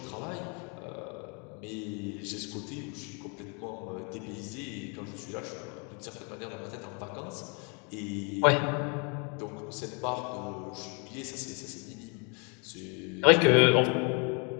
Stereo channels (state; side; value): quieter; right; 35.1 dB